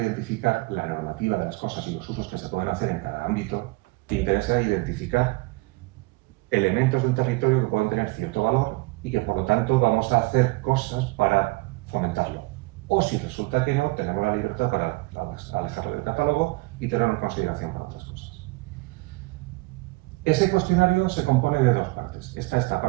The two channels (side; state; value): left; quieter; 23.5 dB